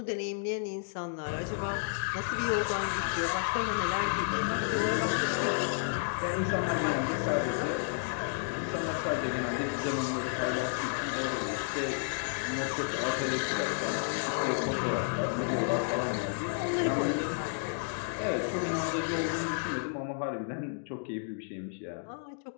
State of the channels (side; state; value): right; silent; digital silence